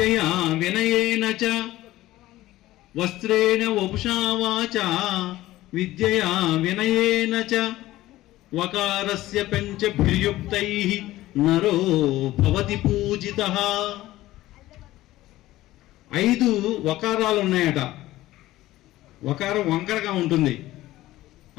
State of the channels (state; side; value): quieter; right; 16.2 dB